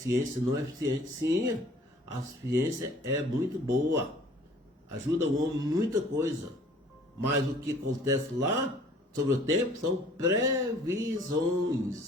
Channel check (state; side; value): normal; both; correlation 0.53